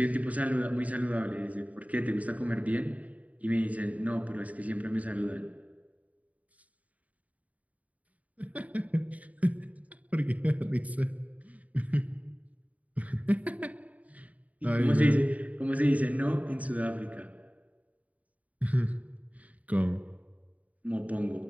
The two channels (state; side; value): late; left; 0.071 ms